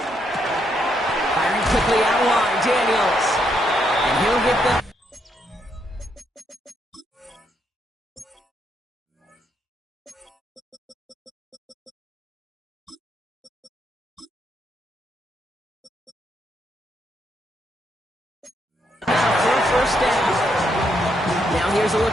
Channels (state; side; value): normal; both; correlation 0.77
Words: Firing quickly out wide, Daniels. And he'll get the... for a first down. Now here's a